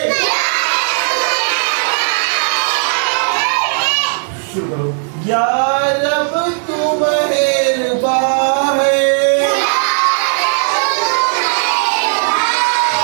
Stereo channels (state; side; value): silent; left; 62 dB below the other